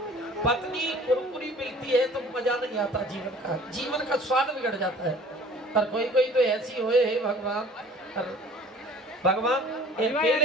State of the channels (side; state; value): both; normal; correlation 0.49